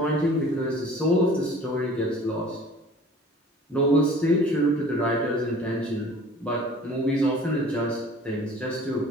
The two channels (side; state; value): both; normal; correlation 0.47